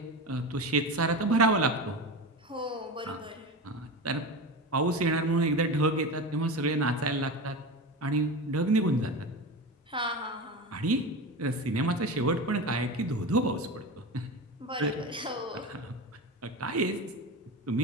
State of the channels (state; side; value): normal; both; correlation 0.25